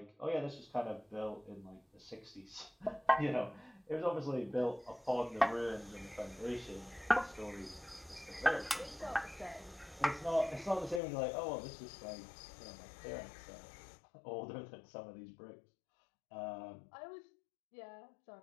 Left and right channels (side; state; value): right; drops out; at 11.0 s